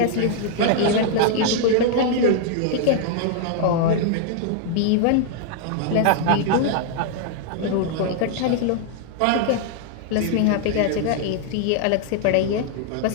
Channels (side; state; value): both; different; correlation 0.00